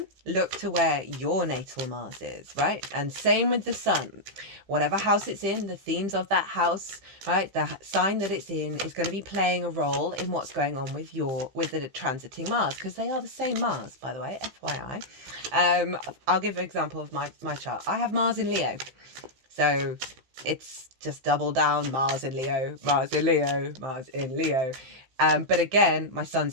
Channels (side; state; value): left; late; 15 ms